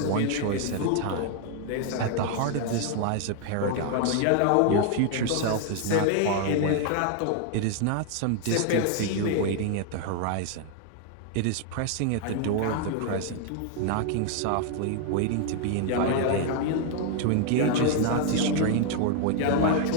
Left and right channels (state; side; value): different; both; correlation 0.00